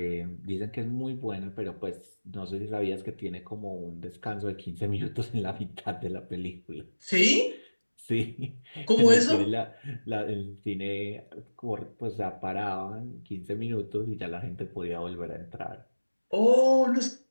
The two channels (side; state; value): both; inverted; correlation -1.00